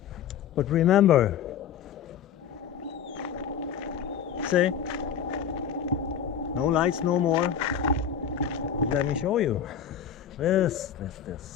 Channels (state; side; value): quieter; right; 8.2 dB